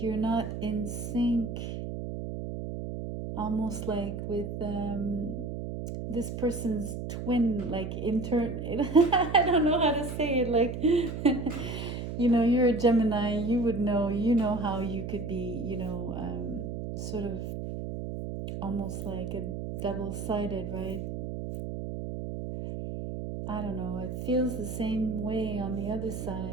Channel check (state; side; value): noise; right; hum, 6 dB below the sound